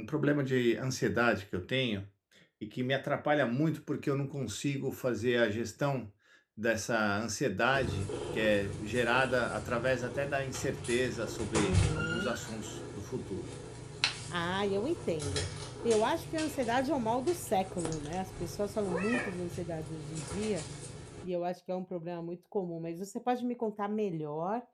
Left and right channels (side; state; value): both; identical; correlation 1.00